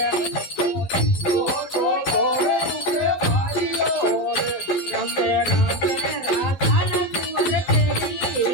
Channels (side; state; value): right; late; 11 ms